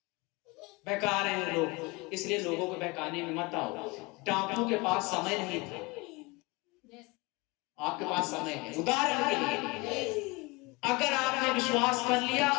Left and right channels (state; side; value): quieter; right; 25.4 dB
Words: बहका रहे हैं लोग, इसलिए लोगों को बहकाने में मत आओ। डाकू के पास समय नहीं था, आपके पास समय है। उदाहरण के लिए, अगर आपने विश्वास कर लिया,